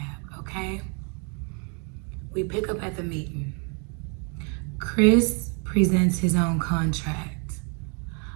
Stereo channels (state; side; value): quieter; left; 37.7 dB